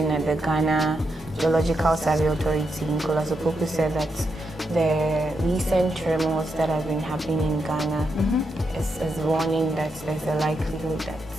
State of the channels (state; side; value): normal; both; correlation 0.83